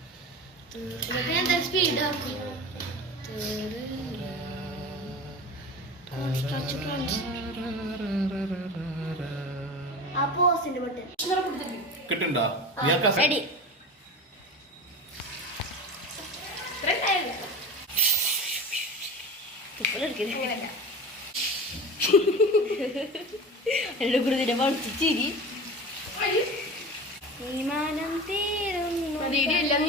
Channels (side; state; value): both; normal; correlation 0.31